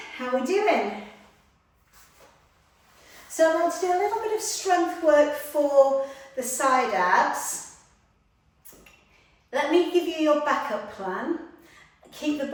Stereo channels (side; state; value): both; identical; correlation 1.00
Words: How are we doing? So I want to do a little bit of strength work for the side abs. Let me give you your backup plan. Keep the